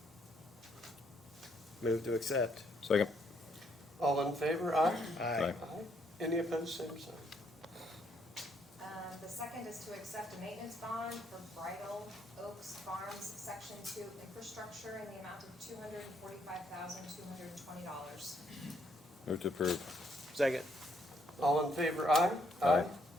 Move to accept. Second. All in favor, aye? Aye. Any opposed, same sign. The second is to accept a maintenance bond for Bridal Oaks Farms Section 2 infrastructure in the amount of $245,220. Move to approve. Second. All in favor, aye? Aye.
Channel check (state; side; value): normal; both; correlation 0.71